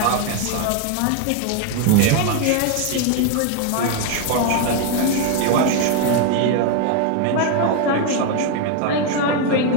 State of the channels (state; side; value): different; both; correlation 0.01